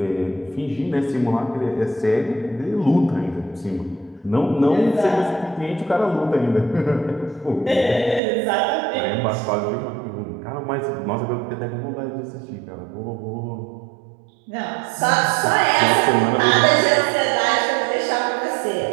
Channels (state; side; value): drops out; left; at 8.2 s